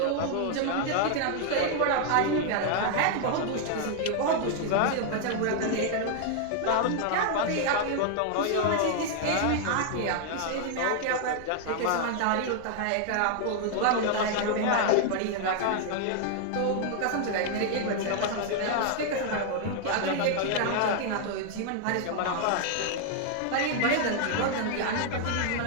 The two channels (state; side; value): different; both; correlation 0.00